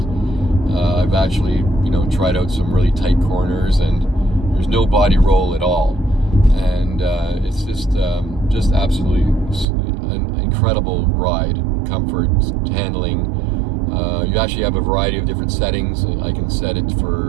I've actually, tried out some really tight corners, and there's no body roll at all. And it's just absolutely an incredible ride. Comfort, handling. You actually have a variety of different settings. I can set it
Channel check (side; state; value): left; drops out; at 9.7 s